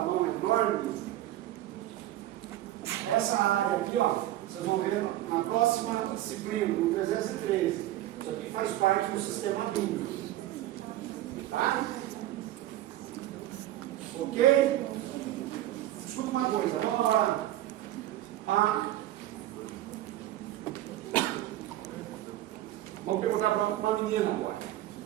mão enorme. Essa área aqui, ó, vocês vão ver na próxima disciplina, no 313. Isso aqui faz parte do sistema límbico. Tá? Ok? Escuta uma coisa, vamos lá. Vamos perguntar para uma menina agora.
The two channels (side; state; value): left; quieter; 14.3 dB